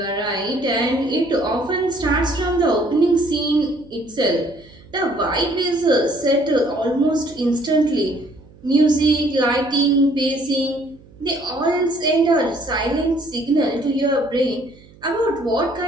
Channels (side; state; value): right; noise; hum, 24 dB below the sound